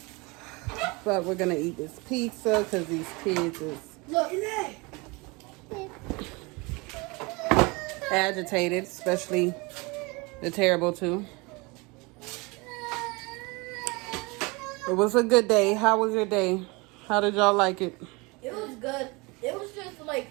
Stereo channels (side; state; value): left; quieter; 26.5 dB